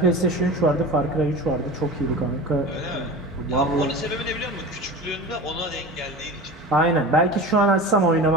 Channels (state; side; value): normal; both; correlation 0.33